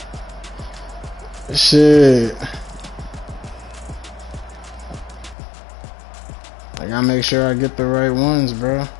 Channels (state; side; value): drops out; right; at 5.4 s